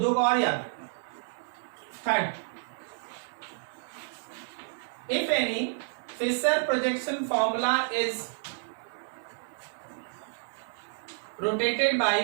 को और याद रखना। Third, if any Fischer projection formula is rotated by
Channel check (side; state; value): left; silent; digital silence